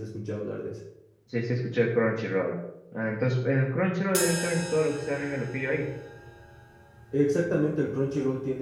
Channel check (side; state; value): both; identical; correlation 1.00